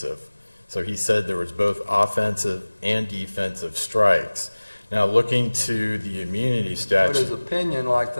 So he said there was both offensive and defensive strikes. Now, looking to the immunity But statute. his opinion, like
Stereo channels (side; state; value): both; inverted; correlation -1.00